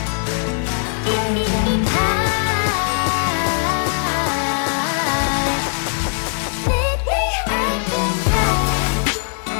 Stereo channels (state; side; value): silent; right; digital silence